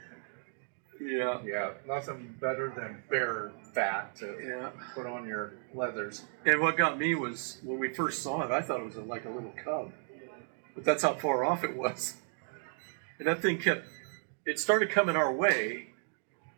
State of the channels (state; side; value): silent; left; 55 dB below the other